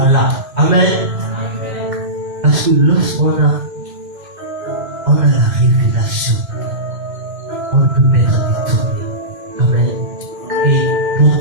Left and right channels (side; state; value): left; late; 2.9 ms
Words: Amen. Parce que lorsqu'on a la révélation, on ne peut pas être détourné. Amen. Et pour